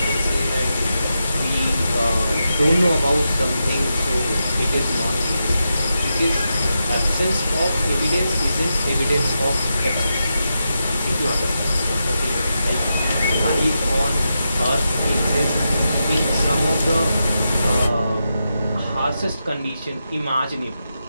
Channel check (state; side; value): inverted; both; correlation -0.87